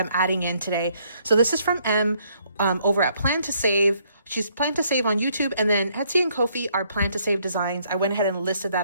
adding in today. So this is from M over at Plan2Save. She's Plan2Save on YouTube, and then Etsy and Ko-fi are Plan2Save designs. I went ahead and listed that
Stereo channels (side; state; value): both; inverted; correlation -0.69